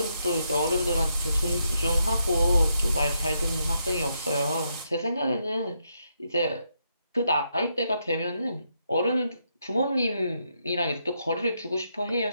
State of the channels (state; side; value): inverted; both; correlation -0.79